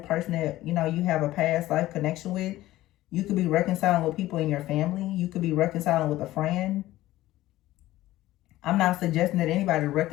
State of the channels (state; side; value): quieter; right; 15.9 dB